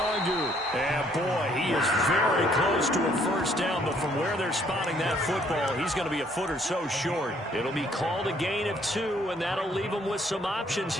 And boy, he is very close to a 1st down, but from where they're spotting that football, he's going to be a foot or so short. It'll be called a gain of 2, and that'll leave them with some options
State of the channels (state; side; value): normal; both; correlation 0.65